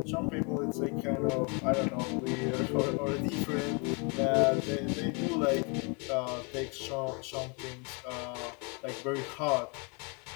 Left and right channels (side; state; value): right; quieter; 33.2 dB